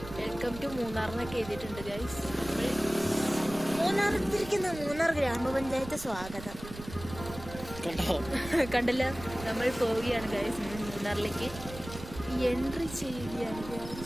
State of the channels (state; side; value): noise; right; rumble, 13 dB below the sound